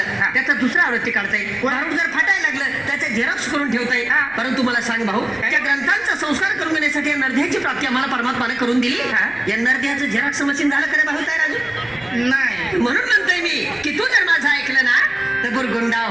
त्याचा दुसरा आवृत्ती काढता येईल. भारूड जर फाटायला लागलं, त्याचे झेरॉक्स करून ठेवता येईल. परंतु मला सांग भाऊ, त्या ग्रंथांचा संस्कार करून घेण्यासाठी या नरध्याची प्राप्ती आम्हाला परमात्माने करून दिली. या नरध्याचं झेरॉक्स मशीन झालं खरं भाऊ तयार अजून नाही. म्हणून म्हणतोय मी की तू जर माझं ऐकलं ना तर बुरगुंडा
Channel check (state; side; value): noise; left; rumble, 26 dB below the sound